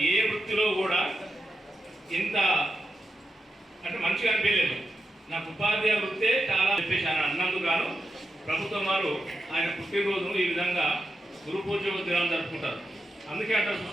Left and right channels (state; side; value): normal; both; correlation 0.88